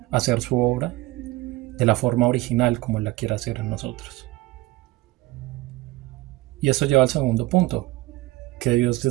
hacer su obra de la forma original como la quiere hacer en nosotros. Y eso lleva al segundo punto, que Dios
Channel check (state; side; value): quieter; left; 18.9 dB